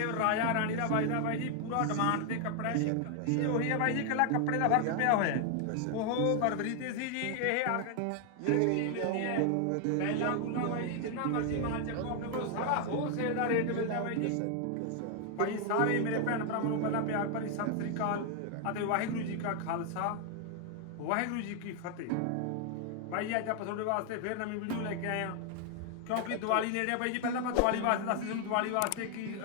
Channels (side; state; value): both; different; correlation 0.00